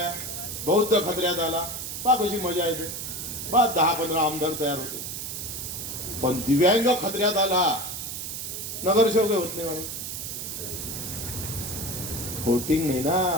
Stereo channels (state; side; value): noise; right; hiss, 6 dB below the sound